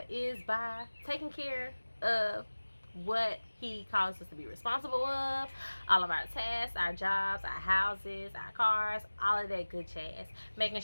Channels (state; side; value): inverted; both; correlation -1.00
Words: is by taking care of what he calls us to be responsible of, all of our tasks, our jobs, our houses, our cars, all of that good jazz. Making